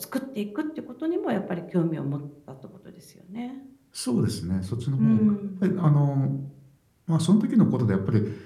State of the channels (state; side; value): identical; both; correlation 1.00